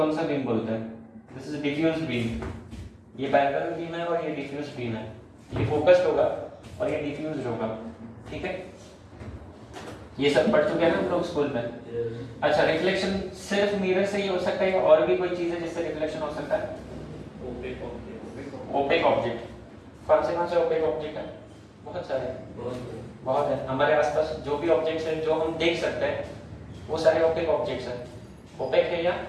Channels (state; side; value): identical; both; correlation 1.00